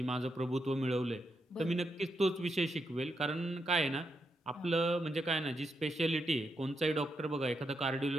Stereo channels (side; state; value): both; normal; correlation 0.83